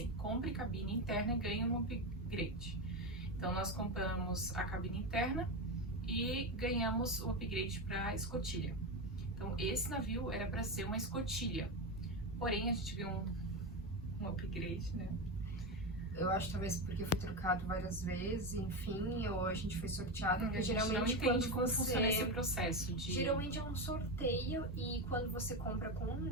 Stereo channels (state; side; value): normal; both; correlation 0.15